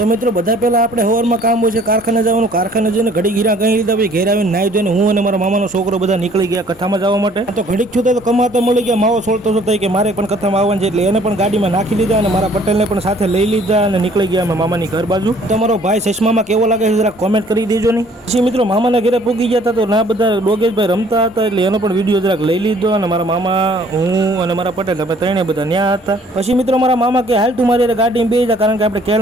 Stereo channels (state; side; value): normal; both; correlation 0.57